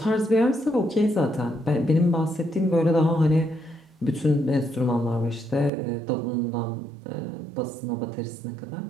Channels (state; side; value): drops out; left; at 5.7 s